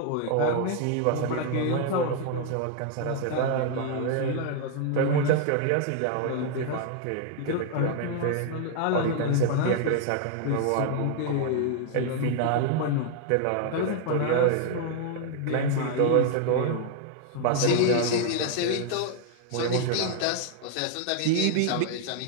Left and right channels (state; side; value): different; both; correlation 0.00